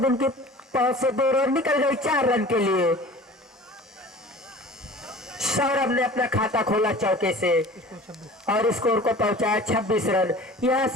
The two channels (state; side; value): normal; both; correlation 0.42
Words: उनके पास से 2 रन निकल गई 4 रन के लिए। सौरभ ने अपना खाता खोला चौके से और स्कोर को पहुंचाया 26 रन। यहां